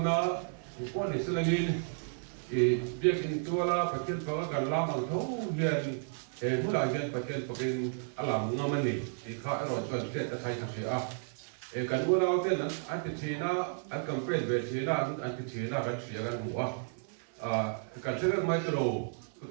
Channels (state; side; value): silent; left; 56 dB below the other